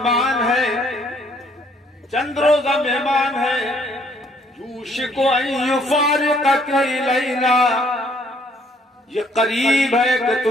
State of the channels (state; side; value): normal; both; correlation 0.64